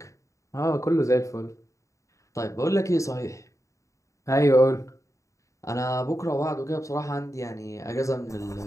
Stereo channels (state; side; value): late; right; 0.15 ms